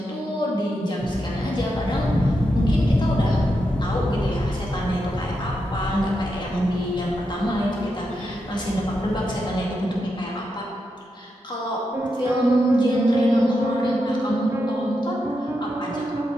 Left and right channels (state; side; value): normal; both; correlation 0.85